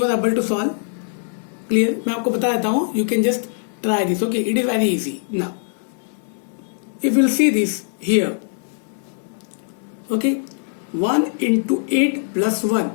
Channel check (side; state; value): right; silent; digital silence